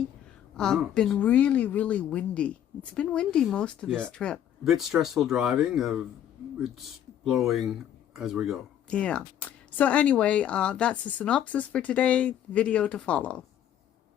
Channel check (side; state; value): right; quieter; 10.4 dB